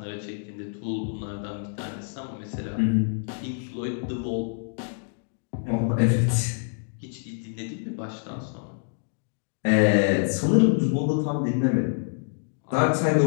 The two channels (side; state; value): right; silent; digital silence